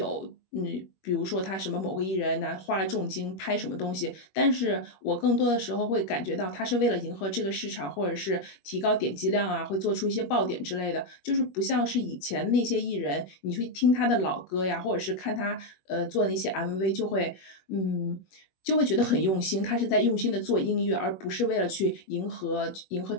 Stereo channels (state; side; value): late; right; 21 ms